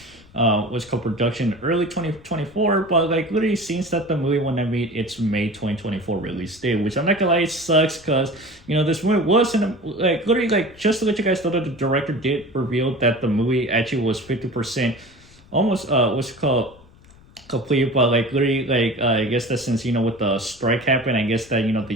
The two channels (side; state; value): left; noise; rumble, 25 dB below the sound